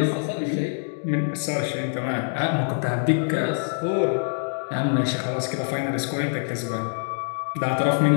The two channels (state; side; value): silent; right; digital silence